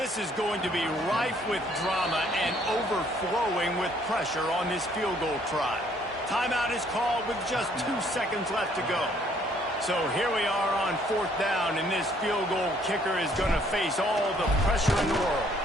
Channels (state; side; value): normal; both; correlation 0.64